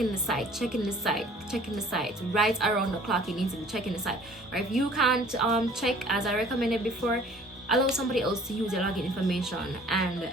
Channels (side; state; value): both; normal; correlation 0.52